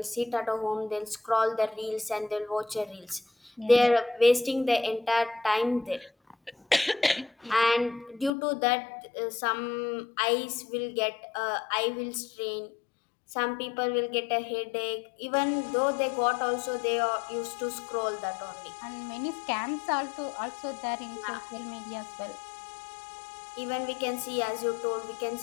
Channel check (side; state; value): right; drops out; at 8.3 s